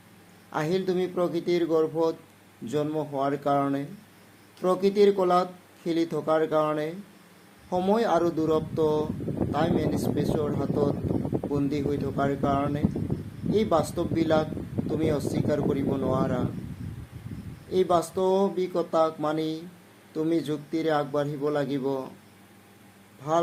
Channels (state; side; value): identical; both; correlation 1.00